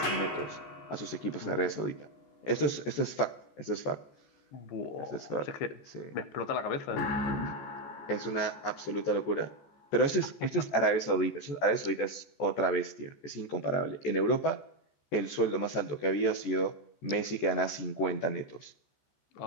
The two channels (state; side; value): late; right; 14 ms